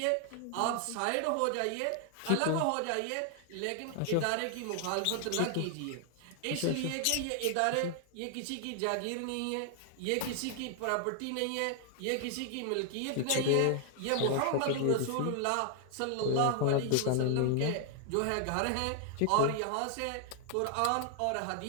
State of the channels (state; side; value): different; both; correlation 0.00